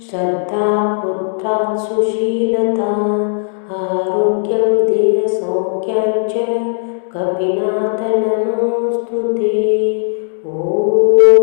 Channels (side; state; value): right; silent; 69 dB below the other